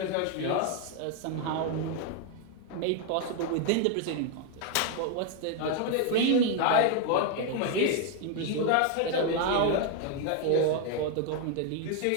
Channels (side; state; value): both; different; correlation 0.01